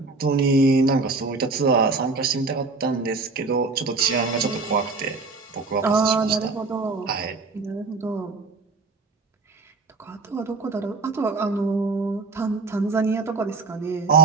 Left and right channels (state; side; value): quieter; left; 3.9 dB